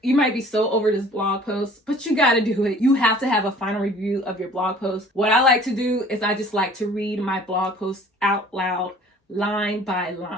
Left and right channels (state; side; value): normal; both; correlation 0.51